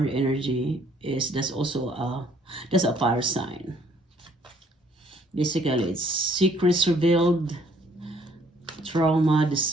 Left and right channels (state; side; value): normal; both; correlation 0.63